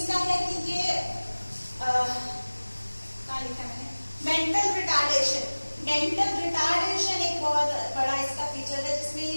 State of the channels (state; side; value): inverted; both; correlation -1.00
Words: है कि ये क्या लिखा मैंने, मेंटल रिटार्डेशन, मेंटल रिटार्डेशन एक बहुत बड़ा इसका फीचर है, जिसमें